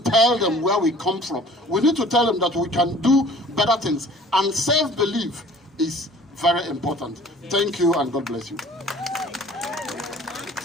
them where we come from. We need to tell them that we can do better things. And self-belief is very important. Thank you, and God bless you.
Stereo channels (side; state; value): both; normal; correlation 0.49